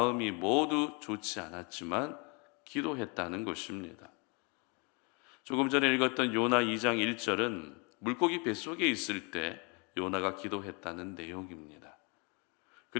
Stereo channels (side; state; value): right; quieter; 32.4 dB